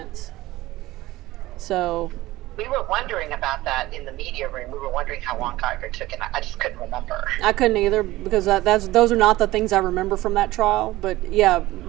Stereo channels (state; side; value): quieter; left; 17.7 dB